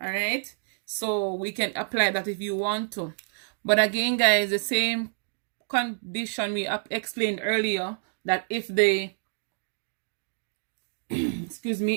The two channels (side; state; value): left; silent; digital silence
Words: right. So we can apply that if you want to. But again, guys, the same condition we explained earlier, that if the excuse